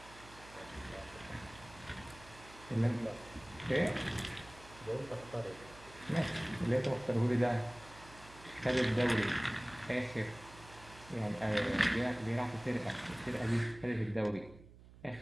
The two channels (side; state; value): right; noise; hum, 20 dB below the sound